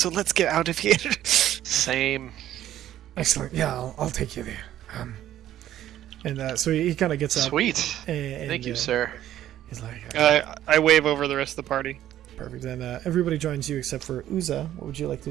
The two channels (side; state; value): left; quieter; 12.3 dB